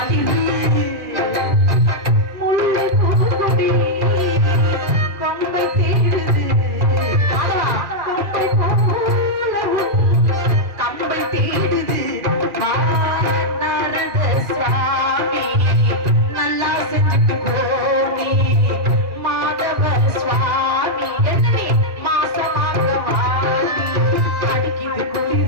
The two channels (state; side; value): late; left; 2.4 ms